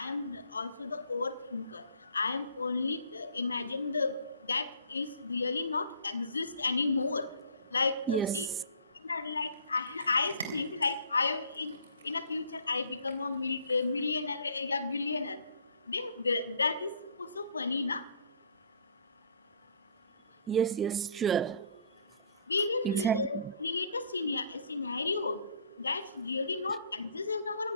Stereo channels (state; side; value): inverted; both; correlation -0.57